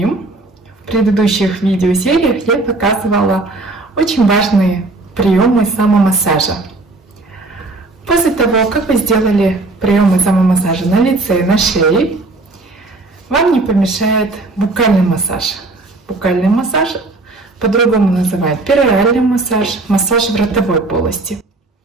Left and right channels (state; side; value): quieter; left; 3.2 dB